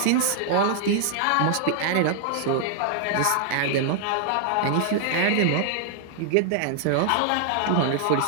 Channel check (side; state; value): both; different; correlation 0.00